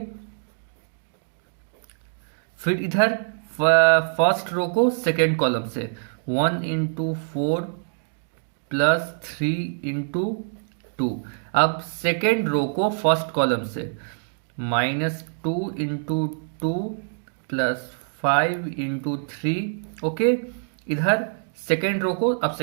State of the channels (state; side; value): silent; left; 62 dB below the other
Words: फिर इधर फर्स्ट रो को सेकेंड कॉलम से 1 इंटू 4 प्लस 3 इंटू 2। अब सेकेंड रो को फर्स्ट कॉलम से -2 इंटू 2 प्लस 5 इंटू 3। ओके, इधर सेकेंड रो को अब